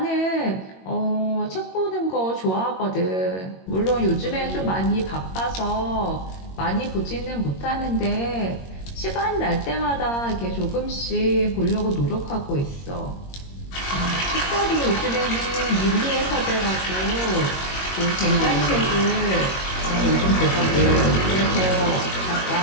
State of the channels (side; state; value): right; late; 21 ms